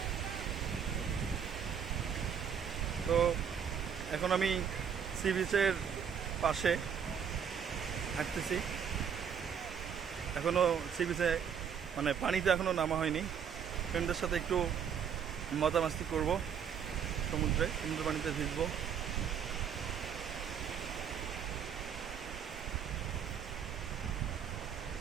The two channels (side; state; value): left; quieter; 7.6 dB